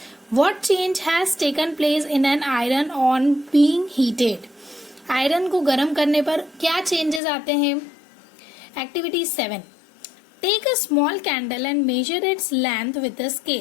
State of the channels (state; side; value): drops out; right; at 7.2 s